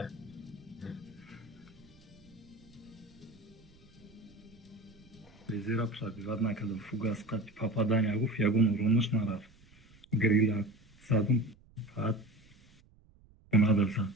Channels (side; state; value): right; noise; rumble, 28 dB below the sound